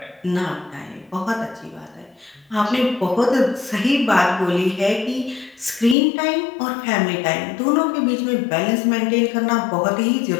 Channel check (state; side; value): drops out; right; at 6.0 s